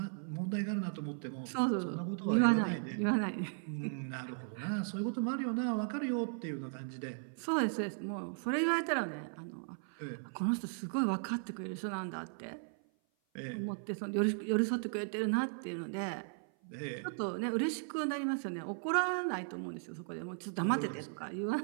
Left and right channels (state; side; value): silent; left; 53 dB below the other